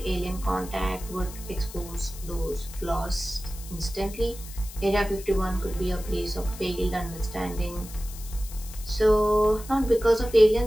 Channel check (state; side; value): noise; left; hiss, 15 dB below the sound